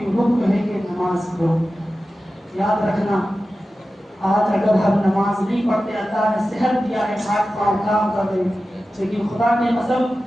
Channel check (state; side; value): normal; both; correlation 0.94